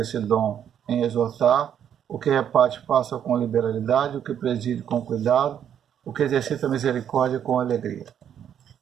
dom em exortar. O que reparte, faça com liberalidade. O que preside, com cuidado. O que exercita misericórdia, com alegria.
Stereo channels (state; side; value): quieter; left; 9.3 dB